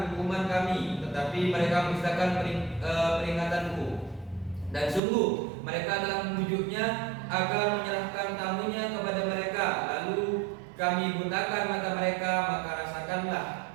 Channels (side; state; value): left; drops out; at 5.0 s